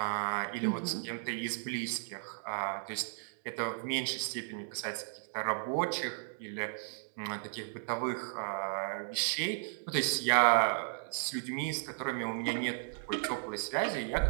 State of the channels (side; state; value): left; silent; digital silence